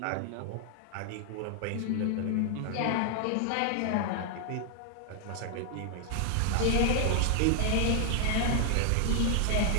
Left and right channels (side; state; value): both; different; correlation 0.00